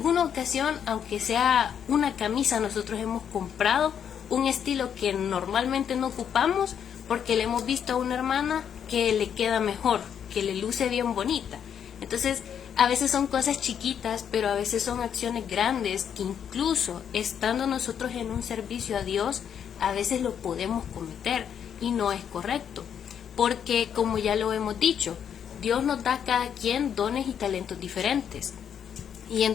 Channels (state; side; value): quieter; right; 8.4 dB